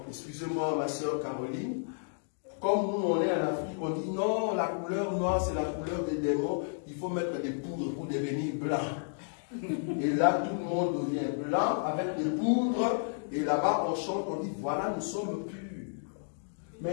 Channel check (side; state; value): right; silent; digital silence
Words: excusez-moi ma soeur Caroline, comme nous on est en Afrique, on dit non, la couleur noire c'est la couleur des démons, il faut mettre des poudres pour devenir blanc. Et là tout le monde devient blanc avec des poudres Et là-bas, on chante, on dit, voilà, nous sommes purs.